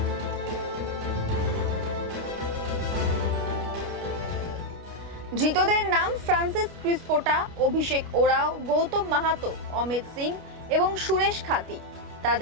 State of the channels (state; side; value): late; left; 29 ms